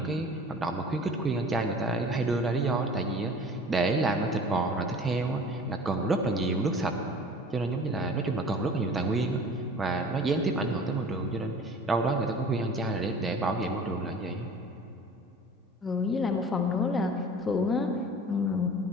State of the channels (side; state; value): both; normal; correlation 0.44